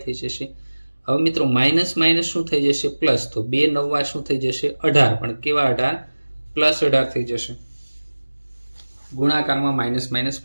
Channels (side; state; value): both; inverted; correlation -1.00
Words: થઈ જશે। હવે મિત્રો માઇનસ માઇનસ શું થઈ જશે પ્લસ, તો 2 9 શું થઈ જશે 18, પણ કેવા 18 +18 થઈ જશે, ગુણાકારમાં માઇનસ માઇનસ